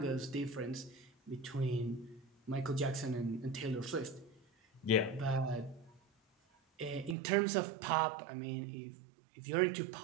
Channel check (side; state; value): left; drops out; at 7.2 s